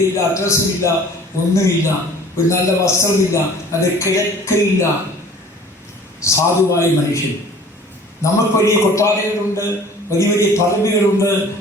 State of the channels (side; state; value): both; normal; correlation 0.48